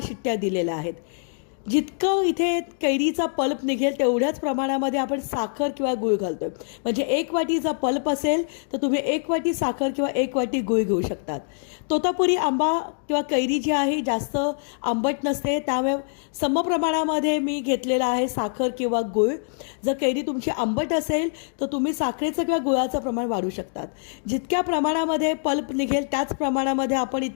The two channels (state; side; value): silent; right; digital silence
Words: शिट्ट्या दिलेल्या आहेत। जितकं इथे कैरीचा पल्प निघेल तेवढ्याच प्रमाणामध्ये आपण साखर किंवा गूळ घालतोय। म्हणजे 1 वाटीचा पल्प असेल तर तुम्ही 1 वाटी साखर किंवा 1 वाटी गूळ घेऊ शकतात। तोतापुरी आंबा किंवा कैरी जी आहे जास्त आंबट नसते, त्यामुळे समप्रमाणामध्ये मी घेतलेला आहे साखर किंवा गूळ। जर कैरी तुमची आंबट असेल तर तुम्ही साखरेचं किंवा गुळाचं प्रमाण वाढवू शकतात। जितक्या प्रमाणामध्ये पल्प निघेल त्याच प्रमाणामध्ये आपण